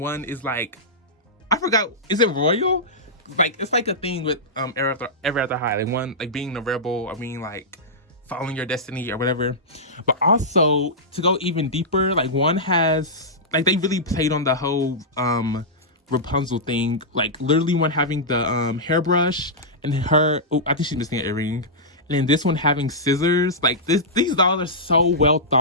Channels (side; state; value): both; normal; correlation -0.12